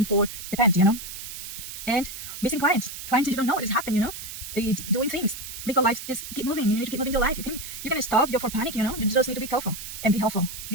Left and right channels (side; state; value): right; noise; hiss, 10 dB below the sound